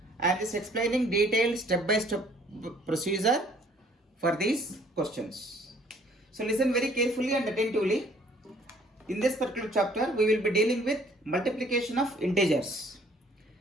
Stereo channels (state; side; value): normal; both; correlation 0.59